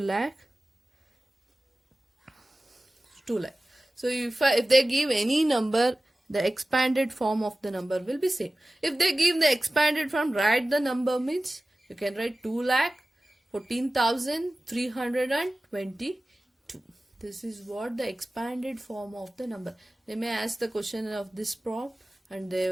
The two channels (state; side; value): normal; both; correlation 0.96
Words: 2 lakh. So if they give any number, the expanded form of the number will be same. If they give the expanded form, write the number means you can write 2 lakh 14,322. This is what the expanded form of the number. They may ask the question of this prompt, and they